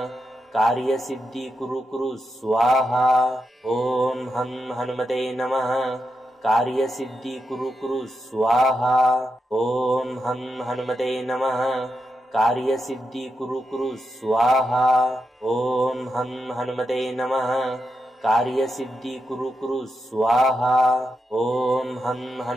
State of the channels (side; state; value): both; normal; correlation 0.86